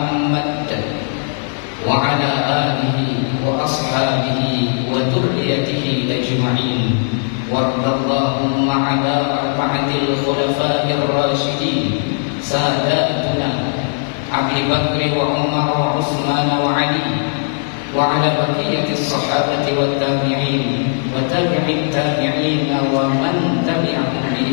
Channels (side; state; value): right; silent; 68 dB below the other